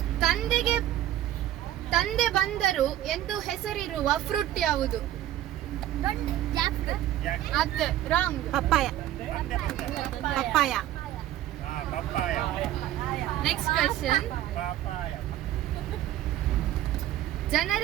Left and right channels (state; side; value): quieter; left; 13.0 dB